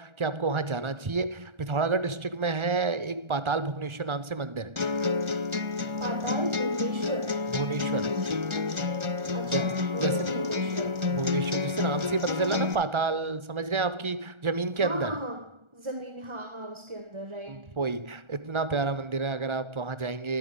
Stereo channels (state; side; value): late; left; 1.4 ms